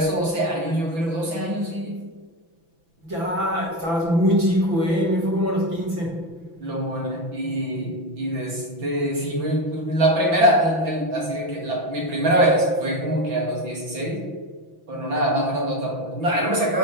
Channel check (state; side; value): late; left; 6.0 ms